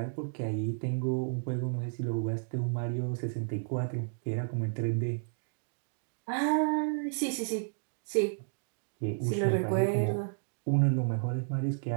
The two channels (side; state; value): left; silent; digital silence